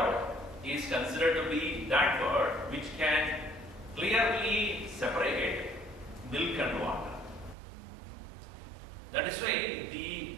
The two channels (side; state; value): left; drops out; at 7.6 s